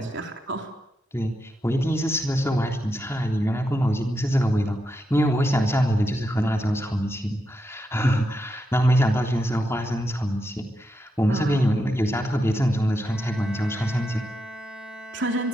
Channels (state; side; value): normal; both; correlation 0.85